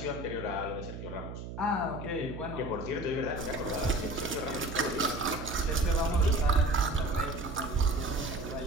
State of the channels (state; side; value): noise; right; hum, 9 dB below the sound